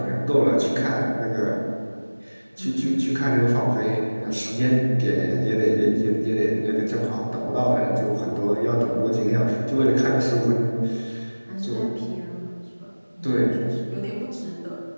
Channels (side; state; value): both; inverted; correlation -1.00